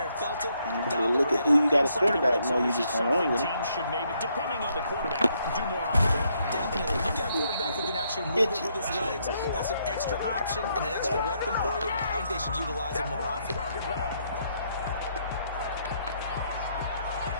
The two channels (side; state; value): both; inverted; correlation -0.74